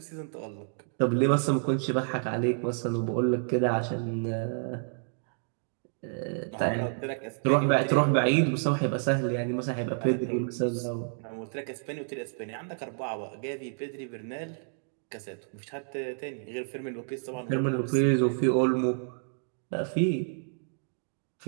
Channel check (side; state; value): left; silent; digital silence